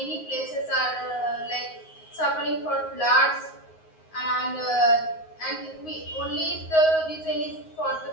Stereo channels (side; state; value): right; late; 9.5 ms